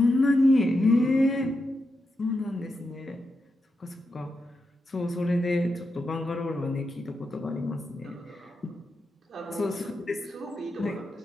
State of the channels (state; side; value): normal; both; correlation 0.86